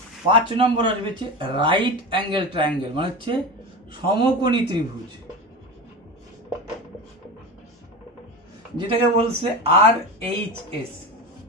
5 নম্বর আসবে হচ্ছে রাইট অ্যাঙ্গেল ট্রায়াঙ্গেল, মানে হচ্ছে সমকোণী ত্রিভুজ, যেটাকে বলছে আর এইচ এস।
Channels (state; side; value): normal; both; correlation 0.26